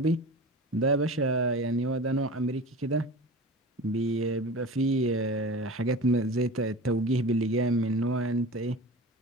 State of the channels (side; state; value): both; normal; correlation 0.34